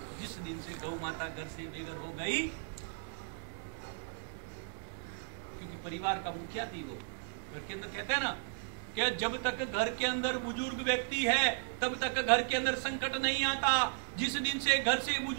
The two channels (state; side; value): silent; left; digital silence